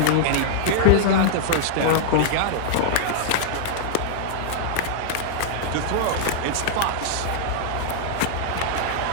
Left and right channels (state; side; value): different; both; correlation -0.01